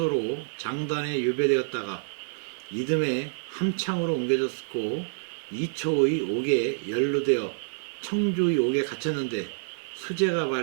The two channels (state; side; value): silent; left; 60 dB below the other